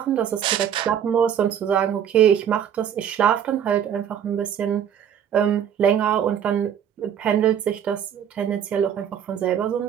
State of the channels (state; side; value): quieter; left; 9.0 dB